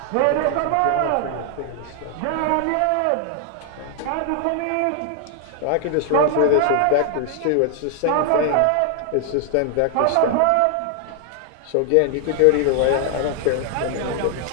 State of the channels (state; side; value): different; both; correlation 0.00